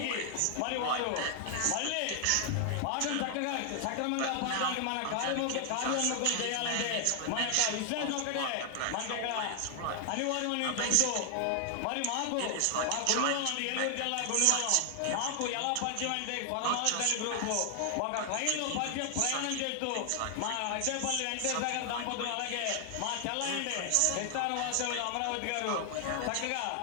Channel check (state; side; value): different; both; correlation 0.00